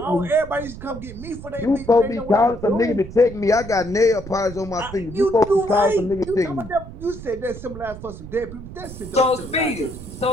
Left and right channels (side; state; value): right; noise; rumble, 13 dB below the sound